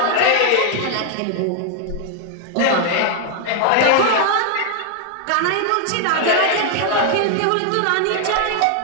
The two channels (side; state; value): both; different; correlation 0.00